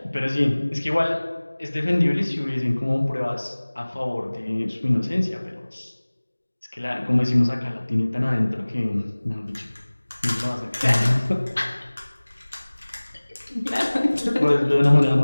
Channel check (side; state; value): both; inverted; correlation -1.00